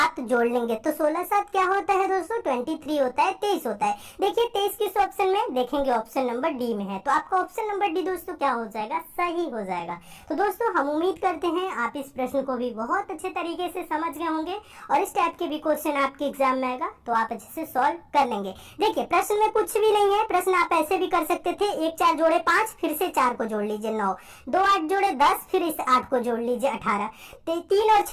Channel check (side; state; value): both; identical; correlation 1.00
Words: जोड़ लेंगे तो 16 7 क्या होता है दोस्तों 23 होता है, 23 होता है। देखिए 23 किस ऑप्शन में देखेंगे, ऑप्शन नंबर डी में है। तो आपका ऑप्शन नंबर डी दोस्तों क्या हो जाएगा सही हो जाएगा। तो दोस्तों हम उम्मीद करते हैं आप इस प्रश्न को भी बहुत अच्छे तरीके से समझ गए होंगे और इस टाइप के भी क्वेश्चन आपके एग्जाम में आएगा तो आप अच्छे से सॉल्व कर लेंगे। देखिए प्रश्न में कुछ भी नहीं है, प्रश्न आप ऐसे भी कर सकते थे 1 4 जोड़े 5 फिर से 4 को जोड़ लीजिए 9, 2 8 जोड़े 10 फिर इस 8 को जोड़ लीजिए 18, 3 और